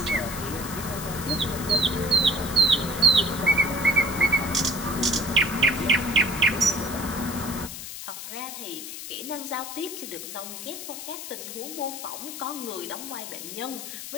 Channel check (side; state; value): left; noise; hiss, 9 dB below the sound